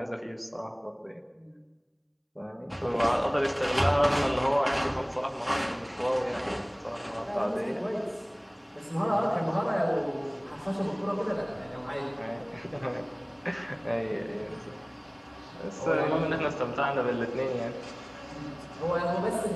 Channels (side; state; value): both; identical; correlation 1.00